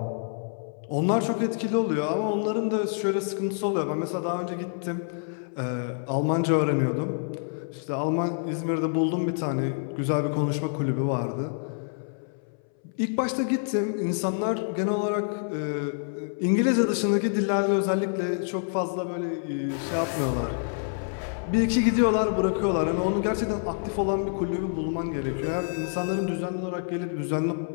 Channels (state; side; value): silent; right; 60 dB below the other